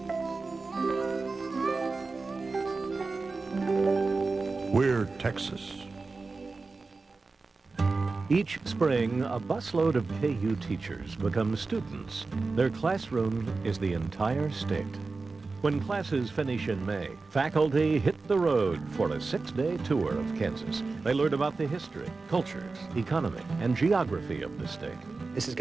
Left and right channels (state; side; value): quieter; left; 3.9 dB